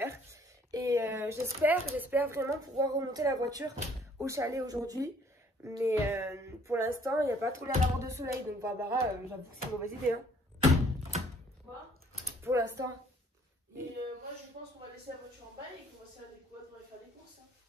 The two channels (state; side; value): normal; both; correlation 0.60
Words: Et j'espère vraiment pouvoir remonter la voiture au chalet aujourd'hui. Mais pour l'instant, il n'y a pas trop l'air d'avoir de soleil. Donc Barbara, j'avoue que c'est une mauvaise idée. Hein. Quoi? Pour l'instant. Et moi, je pense qu'on va laisser la voiture en bas et qu'on va se faire des quads pour aller faire des courses. Hein.